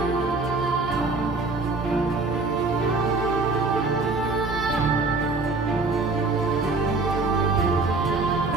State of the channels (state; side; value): quieter; left; 3.7 dB